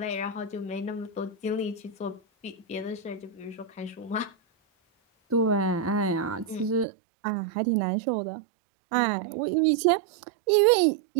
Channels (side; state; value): left; drops out; at 6.9 s